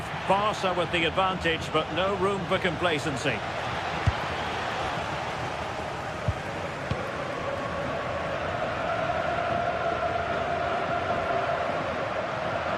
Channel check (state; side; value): identical; both; correlation 1.00